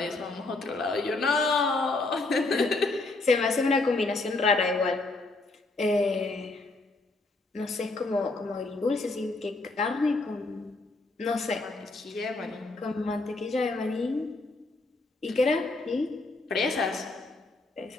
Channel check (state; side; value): quieter; right; 3.2 dB